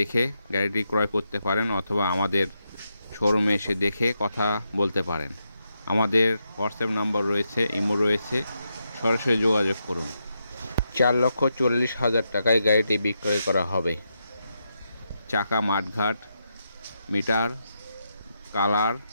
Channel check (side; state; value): both; inverted; correlation -0.84